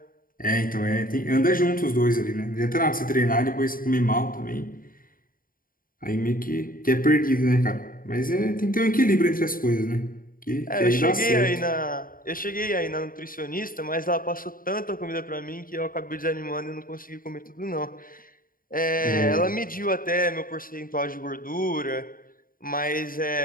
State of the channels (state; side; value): late; right; 0.41 ms